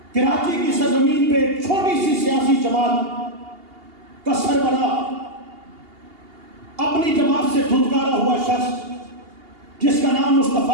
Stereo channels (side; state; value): left; late; 2.8 ms